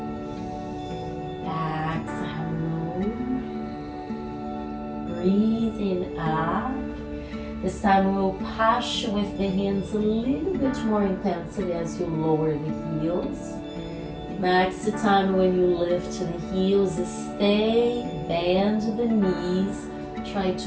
exhale, lower, breathe in up. This time we'll push with the hands a little bit more intensely as you lower the heels. Next time when you lift the heels, stay, bend the knees. Try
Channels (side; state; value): both; identical; correlation 1.00